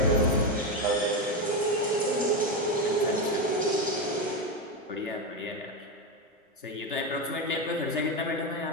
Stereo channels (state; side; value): normal; both; correlation 0.12